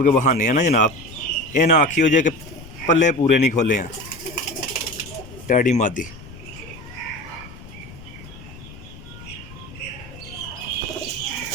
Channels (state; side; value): noise; left; rumble, 17 dB below the sound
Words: के बहाने हैं ना जनाब ये ना आखियो जे कि पल्ले पूरे नहीं खोले हैं। टैडी मादी